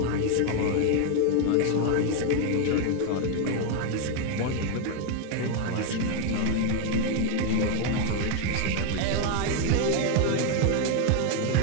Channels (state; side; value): different; both; correlation 0.01